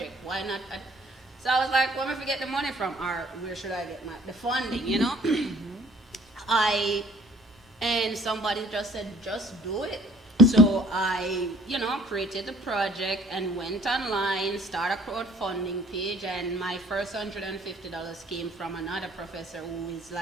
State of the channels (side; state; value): both; normal; correlation 0.56